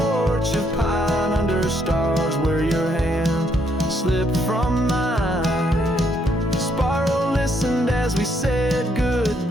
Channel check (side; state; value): both; normal; correlation 0.72